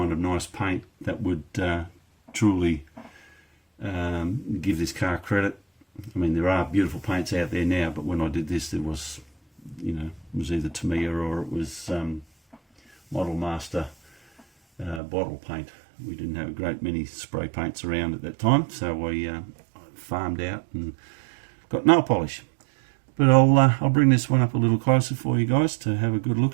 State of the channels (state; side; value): drops out; left; at 15.0 s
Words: a nice paint that would truly give this car credit. I mean, there are beautiful paints out there now, but when I did this, there was, you know, it was either Tamiya or it was Model Master bottle paint. We didn't have a great many spray paints around at that time, so I farmed out and got nail polish. But I'll bring this one up a little closer for you guys to have a good